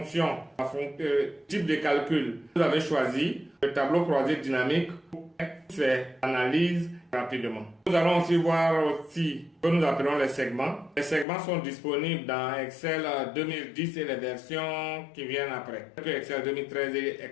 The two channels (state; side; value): drops out; right; at 11.2 s